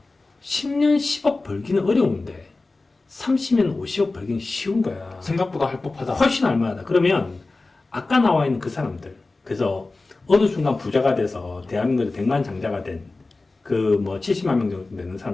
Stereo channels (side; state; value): right; quieter; 3.4 dB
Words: 10년 10억 벌기는 어려운데 30년 50억 벌기는 쉬운 거야. 생각보다 할 법하다. 훨씬 할만하다. 그러면 아까 나와 있는 그 사람들, 그래서 어느 순간 부자가 돼서 대한민국에서 100만 장자가 된 그 뭐 70만 명 정도 되는